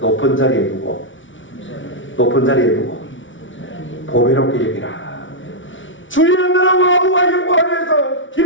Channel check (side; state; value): right; late; 0.56 ms